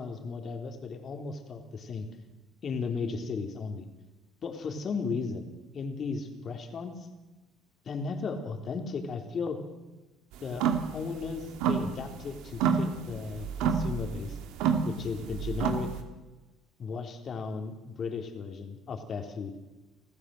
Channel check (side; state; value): both; normal; correlation 0.55